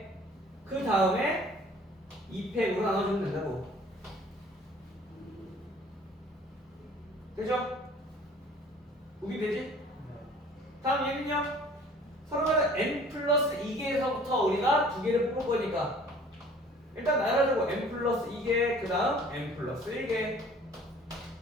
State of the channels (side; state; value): both; normal; correlation 0.51